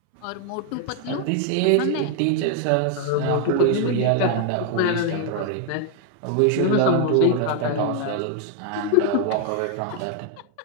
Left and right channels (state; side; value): different; both; correlation 0.00